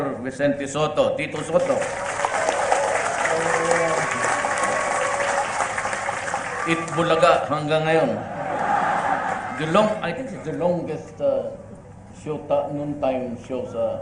Vicente Soto, Tito Soto. Itbulaga hanggang ngayon. I think it's the longest noontime show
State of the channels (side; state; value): both; identical; correlation 1.00